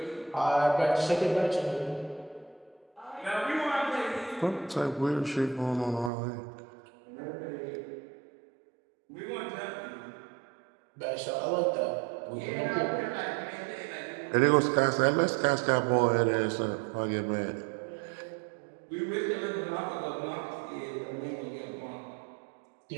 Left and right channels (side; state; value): left; drops out; at 6.1 s